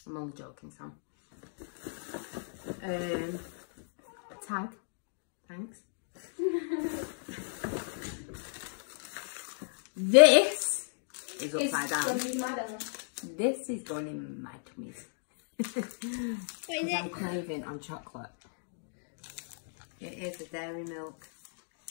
I'm only joking, Sam. A tag, thanks. This is upside down. This is going in my tummies. What is I'm it? craving on chocolate. It is a dairy milk.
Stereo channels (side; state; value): right; silent; digital silence